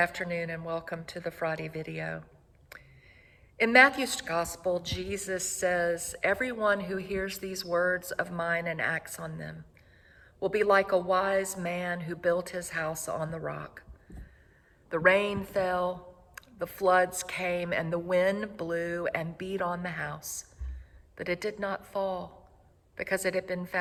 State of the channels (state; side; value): identical; both; correlation 1.00